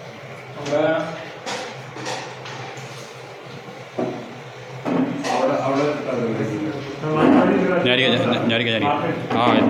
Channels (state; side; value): identical; both; correlation 1.00